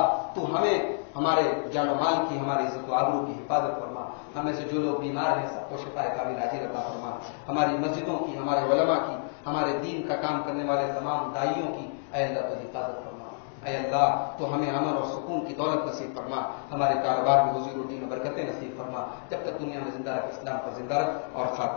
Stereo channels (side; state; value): right; silent; digital silence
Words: تو ہمیں ہمارے جان و مال کی، ہماری عزت و آبرو کی حفاظت فرما. ہمیں سے جو لوگ بیمار ہیں سب کو شفا کامل عاجل عطا فرما. ہماری مسجدوں کی، ہمارے علماء کی، ہمارے دین کا کام کرنے والے تمام داعیوں کی اے اللہ تو حفاظت فرما. اے اللہ تو ہمیں امن اور سکون کی دولت نصیب فرما. ہمارے کاروبار میں روزی روٹی میں برکتیں نصیب فرما. جب تک دنیا میں زندہ رکھ اسلام پر زندہ رکھ اور